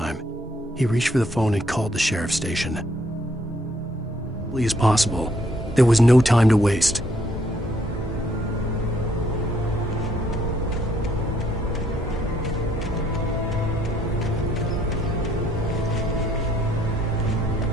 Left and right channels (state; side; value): normal; both; correlation 0.68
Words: He reached for the phone and called the sheriff's station. as possible. There was no time to waste.